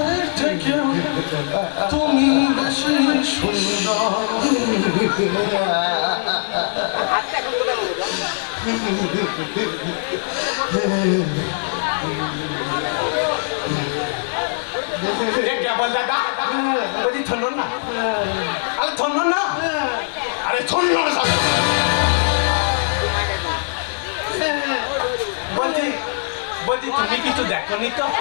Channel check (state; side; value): silent; right; 57 dB below the other